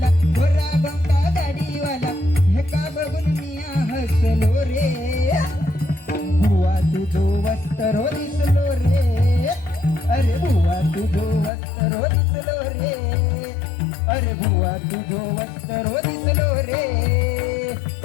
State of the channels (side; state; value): right; drops out; at 11.5 s